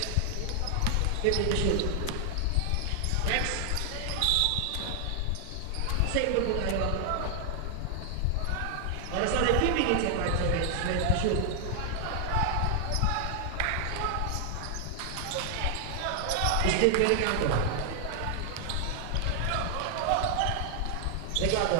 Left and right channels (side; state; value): both; different; correlation 0.00